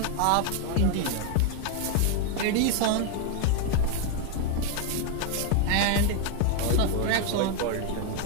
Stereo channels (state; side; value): different; both; correlation 0.01